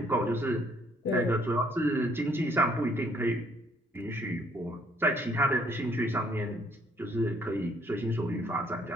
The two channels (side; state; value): both; normal; correlation 0.65